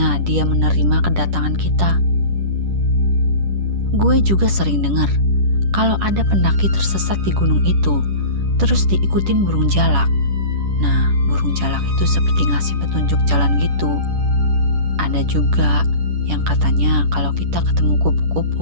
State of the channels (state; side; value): late; left; 10 ms